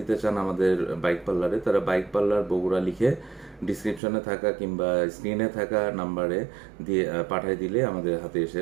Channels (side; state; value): left; drops out; at 4.0 s